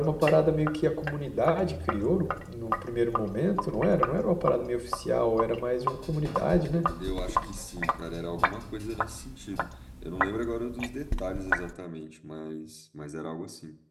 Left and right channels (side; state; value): both; identical; correlation 1.00